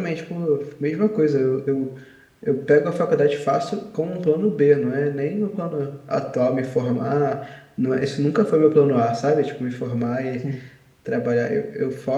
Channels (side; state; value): both; identical; correlation 1.00